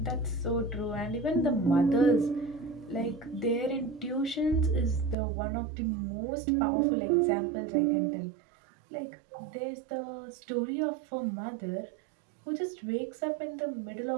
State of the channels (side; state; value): left; drops out; at 5.2 s